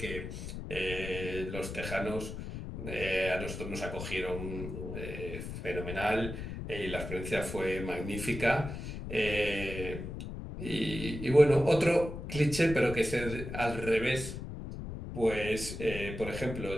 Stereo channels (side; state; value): left; noise; rumble, 7 dB below the sound